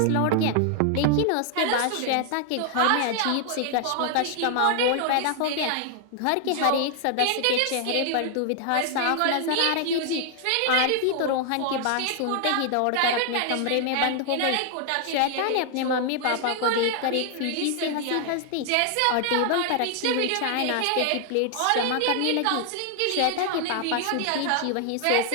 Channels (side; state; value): both; different; correlation 0.00